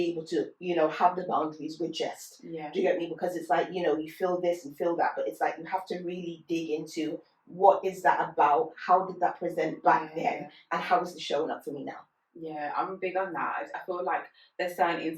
able to, have the boundaries with just. Do you get me? Because it's like, you feel this and feel that, but it's like you have to really dig into what is that about? How did that present back then? And how is it showing up for me now? Yeah, I'm big on that. I feel like there's certain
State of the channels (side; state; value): both; identical; correlation 1.00